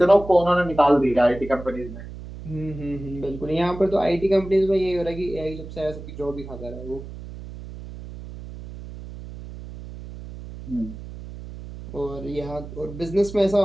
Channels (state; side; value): noise; right; hum, 13 dB below the sound